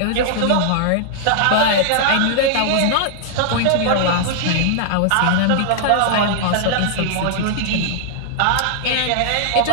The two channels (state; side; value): different; both; correlation -0.01